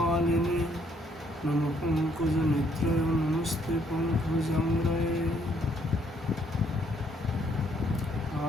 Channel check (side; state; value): both; normal; correlation 0.68